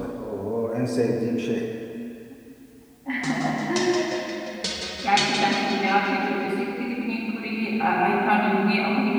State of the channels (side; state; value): both; identical; correlation 1.00